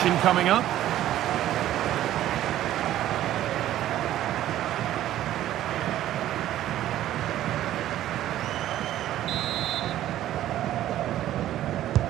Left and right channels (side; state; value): left; quieter; 13.0 dB